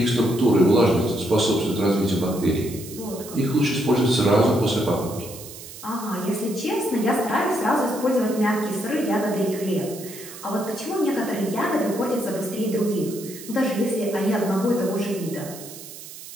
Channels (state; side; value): noise; right; hiss, 14 dB below the sound